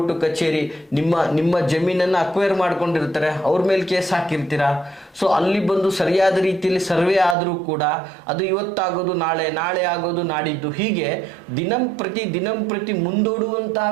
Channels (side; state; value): left; drops out; at 7.4 s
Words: ಕಚೇರಿ ನಿಮ್ಮ ಜಮೀನನ್ನು ಅಕ್ವೈರ್ ಮಾಡ್ಕೊಂಡಿರ್ತಾರೆ, ಅವ್ರ ಮೇಲೆ ಕೇಸ್ ಹಾಕಿರ್ತೀರಾ. ಸೊ ಅಲ್ಲಿ ಬಂದು ಸರಿಯಾದ ರೀತಿಯಲ್ಲಿ ಸರ್ವೆ ಆದರೂ ಕೂಡ ಅದು ಇವತ್ತಾಗೋದು ನಾಳೆ, ನಾಳೆ ಆಗೋದು ನಾಡಿದ್ದು, ಹೀಗೆ ದಿನಂಪ್ರತಿ ಮುಂದೂಡುವಂತಹ